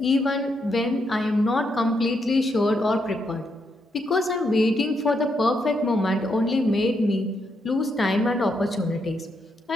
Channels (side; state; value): both; normal; correlation 0.79